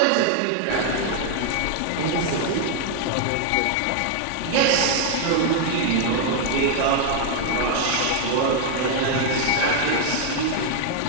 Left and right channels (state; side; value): different; both; correlation 0.00